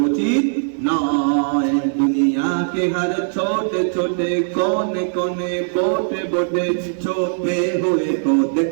উচিত নয়। দুনিয়া के हर छोटे छोटे कोने कोने बोटे बोटे छुपे हुए को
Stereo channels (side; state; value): left; silent; digital silence